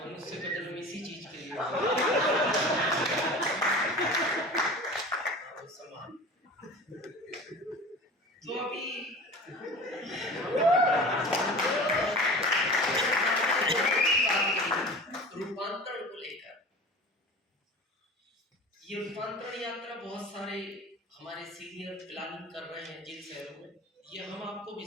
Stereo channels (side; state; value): both; normal; correlation 0.37